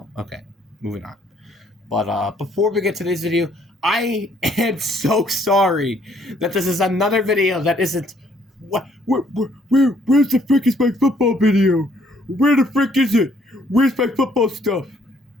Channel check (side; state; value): both; normal; correlation 0.65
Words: Okay, moving on. But before we get to this video, I am so sorry that this is another video that isn't. Where's the frick is my football video? Where the frick is it? Where's my football stuff?